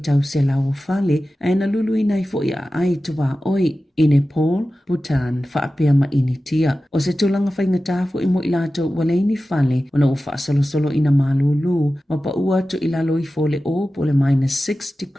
se lau o fale, aina luluina i fo ia ai tuwa oi. I Nepal, Bhutan, whaapea ma initia. O se tulanga whaingatafu i mo ilato waleini fale, ona o whaasolo ina malulu, ma pa uatu ilalo i fole o po le -6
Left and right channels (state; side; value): normal; both; correlation 0.95